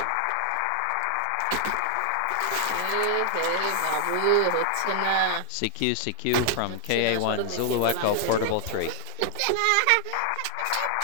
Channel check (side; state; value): both; different; correlation 0.00